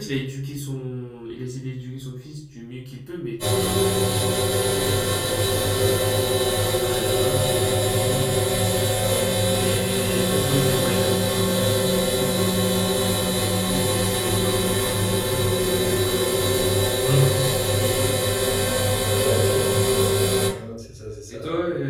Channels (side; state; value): both; identical; correlation 1.00